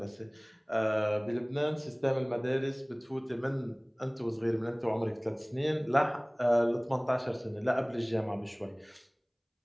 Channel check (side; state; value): both; identical; correlation 1.00